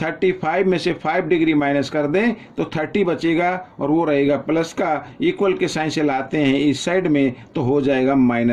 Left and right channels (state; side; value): identical; both; correlation 1.00